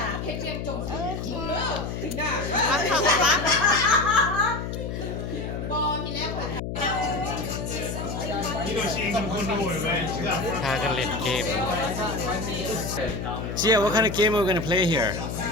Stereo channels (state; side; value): noise; left; hum, 5 dB below the sound